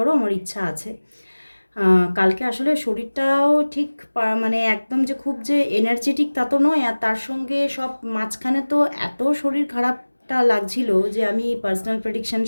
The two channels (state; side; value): inverted; both; correlation -1.00